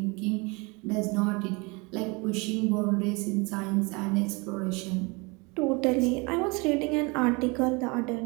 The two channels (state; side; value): quieter; left; 28.0 dB